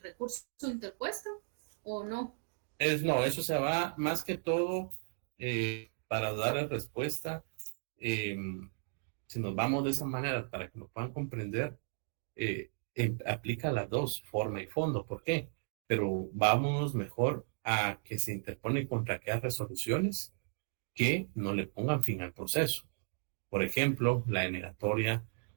recurso interpuesto o no? No, eso se va más que todo para dar respuesta. eh, si nos vamos de esa manera para que nos puedan comprender, aplica las dos, forma y fondo. ¿Por qué? Pero vámonos mejor a que se interpone contra aquellas resoluciones que no le pongan fin al proceso. Por ejemplo, la denegatoria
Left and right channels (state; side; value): silent; left; digital silence